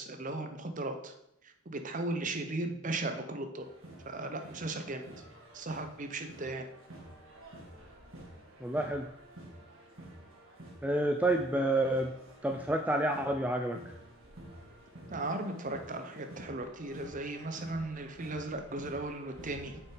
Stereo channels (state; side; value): normal; both; correlation 0.57